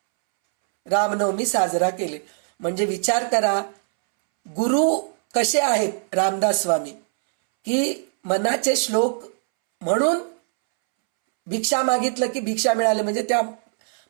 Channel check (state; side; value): silent; left; 64 dB below the other